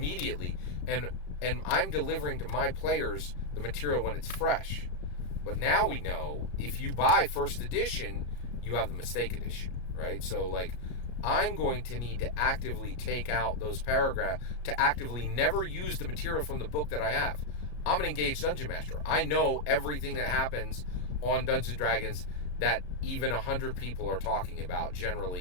and I'm delivering to my players the material when it's fresh. But now we know if you buy first edition, you have the mistake edition, right? So I'm going to need to actively take out those paragraphs, to actively never use the material from the book that I have. I'm an engaged dungeon master. I know everything that happens on Dungeons & Dragons that even 100 people are talking about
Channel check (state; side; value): late; right; 33 ms